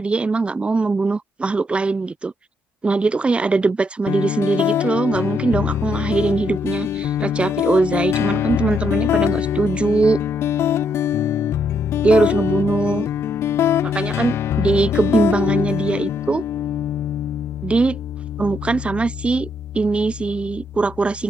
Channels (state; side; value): normal; both; correlation 0.75